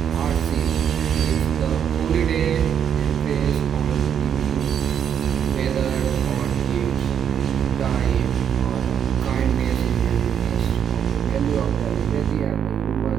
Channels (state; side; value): quieter; left; 8.5 dB